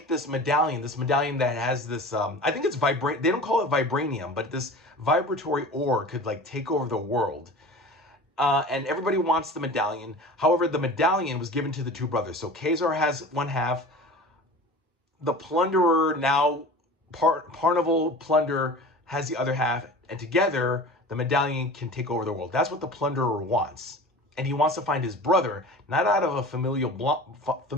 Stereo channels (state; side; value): normal; both; correlation 0.37